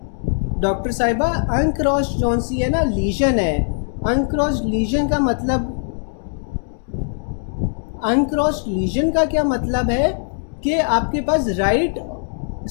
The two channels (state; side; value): silent; right; 65 dB below the other